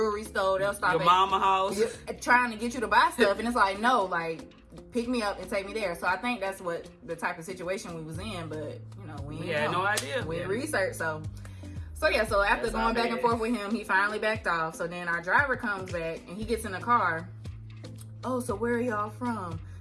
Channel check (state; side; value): identical; both; correlation 1.00